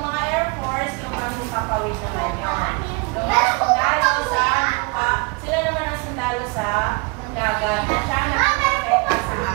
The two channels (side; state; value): left; quieter; 29.8 dB